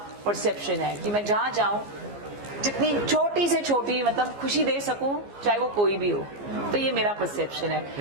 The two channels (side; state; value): left; late; 15 ms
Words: परसेप्शन है कि मैं जहाँ जाऊँ जितनी छोटी से छोटी मतलब खुशी दे सकूं, चाहे वो कोई भी हो। तो ये मेरा परसेप्शन